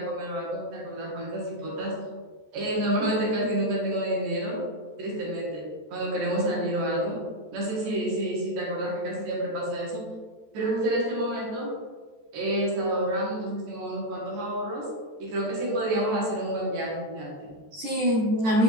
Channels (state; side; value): late; left; 14 ms